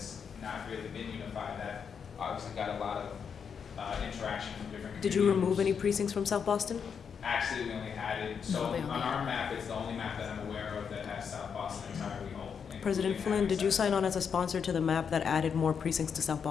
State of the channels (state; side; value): quieter; right; 6.8 dB